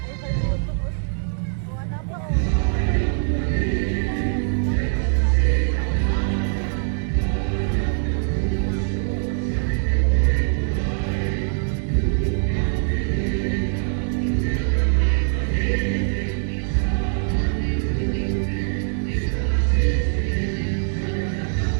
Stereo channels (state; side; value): silent; left; digital silence